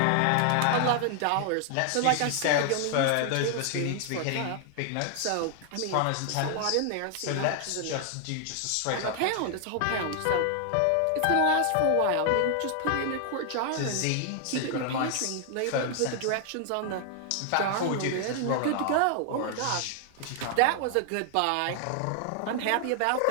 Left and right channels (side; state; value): both; different; correlation 0.00